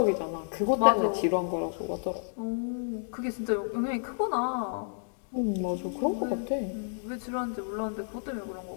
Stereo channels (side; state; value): right; silent; digital silence